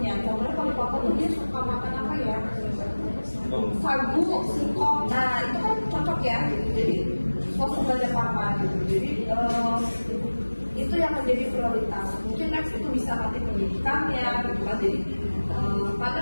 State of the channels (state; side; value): inverted; both; correlation -1.00